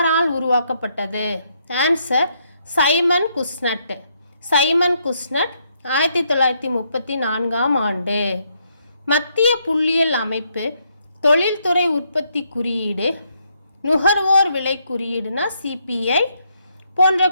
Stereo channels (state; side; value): inverted; both; correlation -0.75